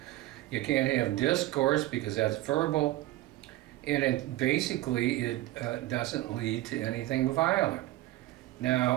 You can't have discourse because that's verbal, and it doesn't lead to anything violent.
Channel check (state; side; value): quieter; left; 16.7 dB